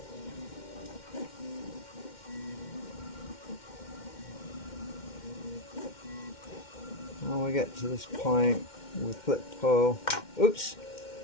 When we get to this point, we flip the pole. Oops!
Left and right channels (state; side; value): late; right; 2.1 ms